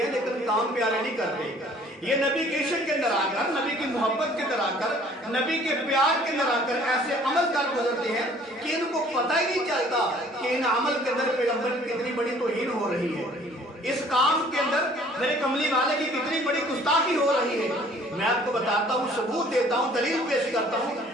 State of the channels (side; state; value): both; normal; correlation 0.55